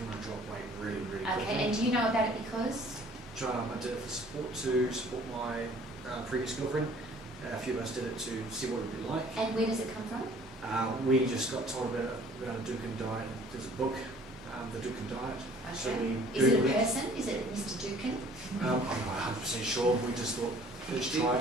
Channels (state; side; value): normal; both; correlation 0.54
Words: want to drop weight really, really quickly. Okay, and do you know about it because? I did it for support, to support my previous girlfriend. A few of us did it to see what it would be like. And where does it come from? We just got told about a Duncan diet. There's a book, The Duncan Diet. So Okay. we Is it a Googled person? Is it Mr. Dukin? I'm not 100% sure. We just thought, let's try